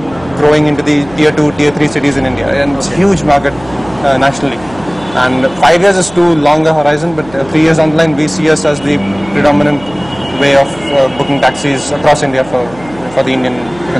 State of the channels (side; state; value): right; noise; hum, 20 dB below the sound